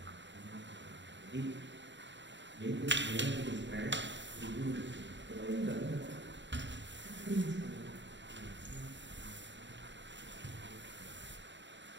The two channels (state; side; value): late; left; 0.53 ms